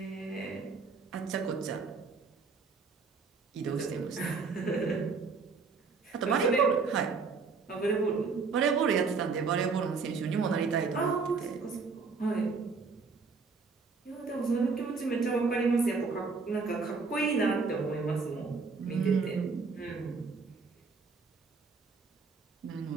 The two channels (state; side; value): quieter; left; 4.7 dB